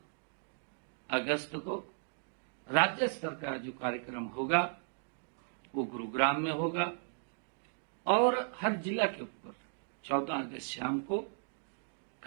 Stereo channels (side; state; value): left; silent; digital silence